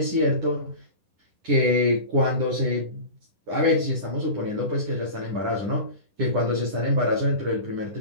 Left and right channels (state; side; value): late; left; 9.8 ms